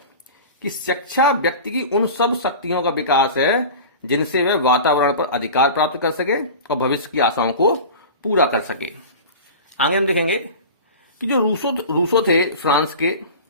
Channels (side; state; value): both; inverted; correlation -0.34